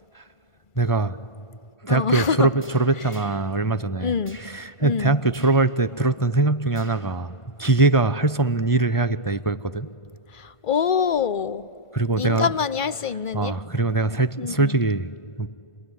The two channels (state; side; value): late; right; 1.5 ms